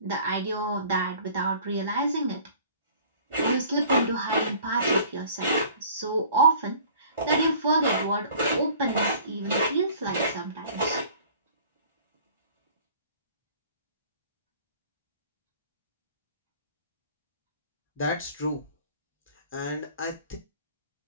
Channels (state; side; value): inverted; both; correlation -0.50